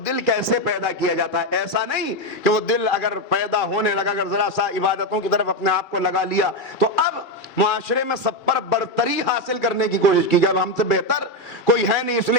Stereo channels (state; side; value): late; right; 2.4 ms